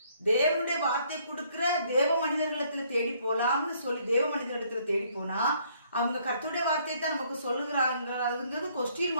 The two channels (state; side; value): inverted; both; correlation -0.65